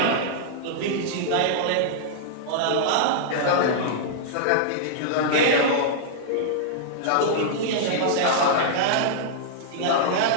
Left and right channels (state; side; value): different; both; correlation -0.02